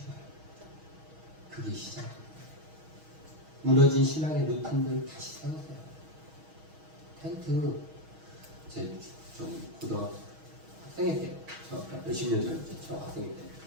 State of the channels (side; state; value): left; late; 6.3 ms